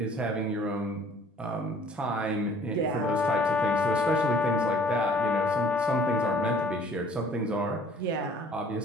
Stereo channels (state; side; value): normal; both; correlation 0.54